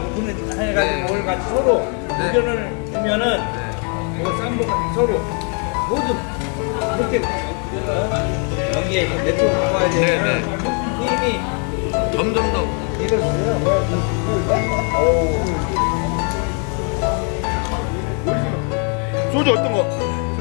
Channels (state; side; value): quieter; right; 39.6 dB